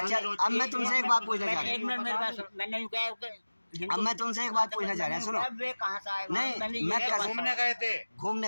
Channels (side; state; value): both; inverted; correlation -1.00